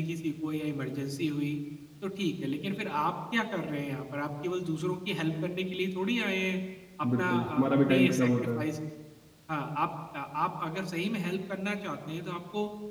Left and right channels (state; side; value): identical; both; correlation 1.00